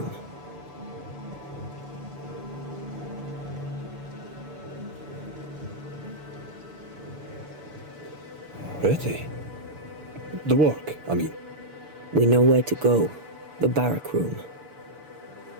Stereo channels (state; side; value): late; left; 6.9 ms